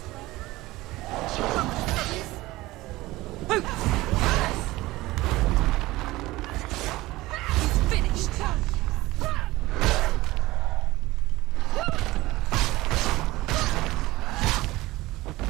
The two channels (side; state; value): left; quieter; 19.0 dB